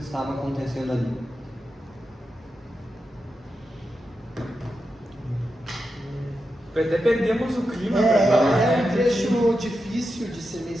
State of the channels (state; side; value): normal; both; correlation 0.88